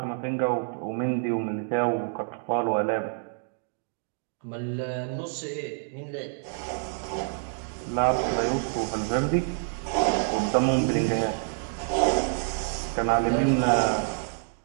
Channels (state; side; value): silent; left; 60 dB below the other